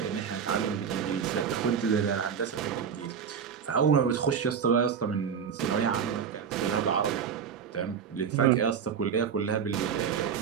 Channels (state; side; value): quieter; left; 7.2 dB